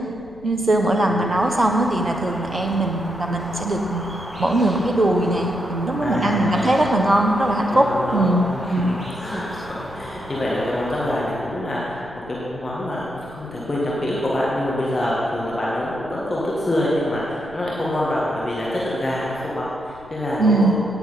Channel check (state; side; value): noise; left; rumble, 23 dB below the sound